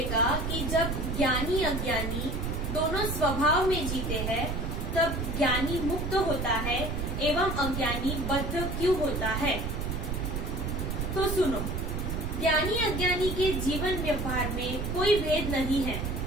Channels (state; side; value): noise; right; rumble, 2 dB below the sound